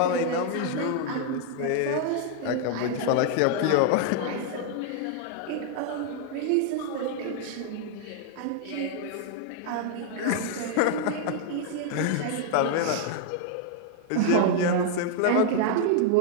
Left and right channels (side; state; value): both; different; correlation 0.00